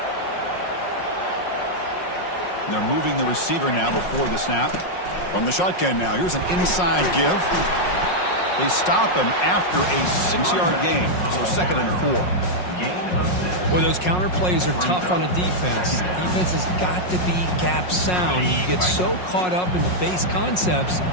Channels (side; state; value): right; late; 5.5 ms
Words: And they're moving the receiver now before the snap. From the shotgun now. Here's an inside give. They stop him after a 6-yard gain. So 2nd and 4. Boy, those counter plays are tough on a defense. Defense has got to be gap sound. You get so caught up in the base concepts